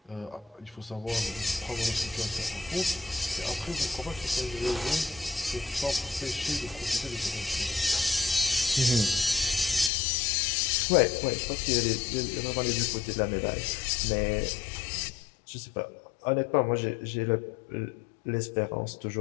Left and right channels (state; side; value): drops out; right; at 9.9 s